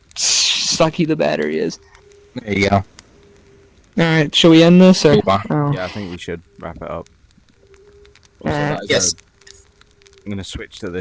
sucky the battery is. There you go. Alright, shall we end this? Or? Oh. Yeah, I think we should wrap it up. Also, Alright. that is Yes. I'm gonna switch to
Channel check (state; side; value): identical; both; correlation 1.00